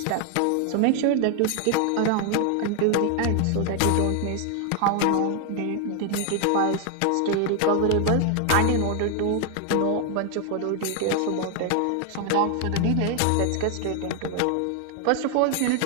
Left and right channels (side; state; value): both; different; correlation 0.00